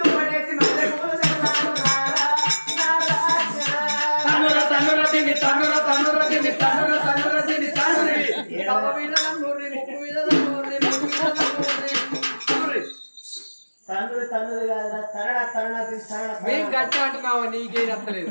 మేము గట్టి అంటున్నావా నీకేం అర్థలేదు.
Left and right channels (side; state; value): both; inverted; correlation -1.00